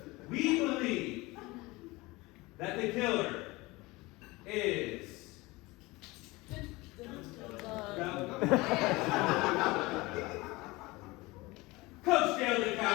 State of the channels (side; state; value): right; quieter; 22.1 dB